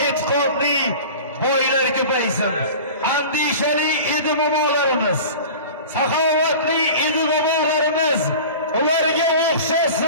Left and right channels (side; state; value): both; inverted; correlation -0.37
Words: e'tiqodli boylar ko'paysin. Andishali edi momolarimiz, saxovatli edi bobolarimiz, ularga